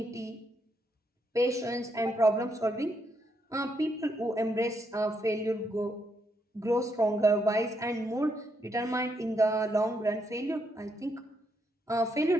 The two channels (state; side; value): normal; both; correlation 0.77